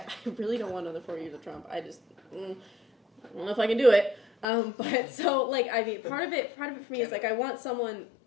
really don't want another 4 years of Trump. I just, I don't know if I can do it. But so like, I mean, part of it for me is like, I want someone,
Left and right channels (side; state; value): right; drops out; at 4.5 s